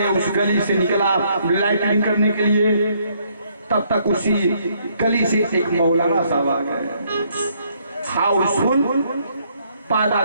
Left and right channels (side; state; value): both; inverted; correlation -0.69